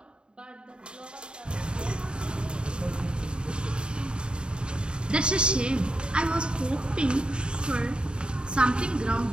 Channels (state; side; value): late; left; 0.051 ms